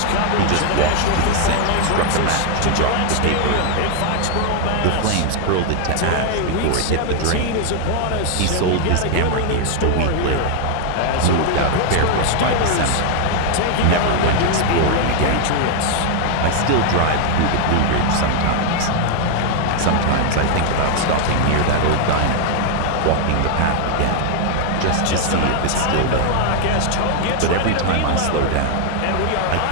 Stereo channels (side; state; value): both; different; correlation 0.00